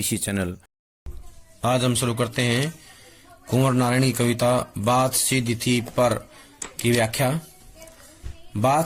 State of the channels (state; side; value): identical; both; correlation 1.00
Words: चैनल। आज हम शुरू करते हैं कुंवर नारायण की कविता बात सीधी थी पर की व्याख्या।